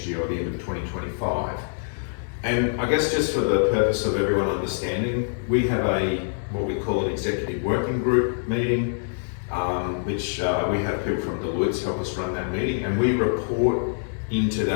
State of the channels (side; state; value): right; silent; digital silence